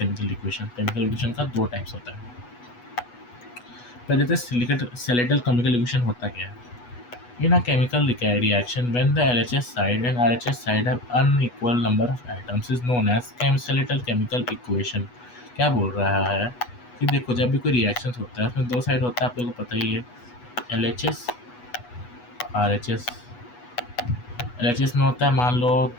equation. Chemical equation का दो टाइप्स होता है। पहले तो स्केलेटल केमिकल इक्वेशन होता क्या है। In a chemical reaction, when the LHS side and RHS side have unequal number of atoms is known as skeletal chemical equation। क्या बोल रहा है कि देखो जब भी कोई रिएक्शन होता है उसमें दो साइड होता है, आप लोगों को पता ही है, LHS RHS। LHS में होता है, मान लो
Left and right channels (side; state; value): right; late; 8.2 ms